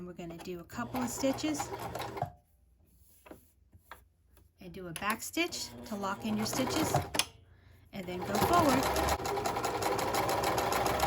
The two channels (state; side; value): identical; both; correlation 1.00